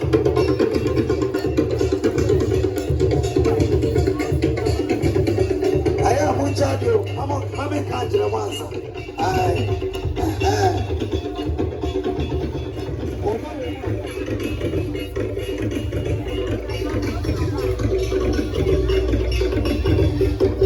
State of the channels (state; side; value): identical; both; correlation 1.00